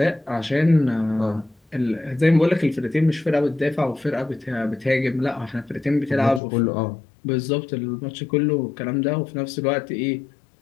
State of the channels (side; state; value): right; drops out; at 6.4 s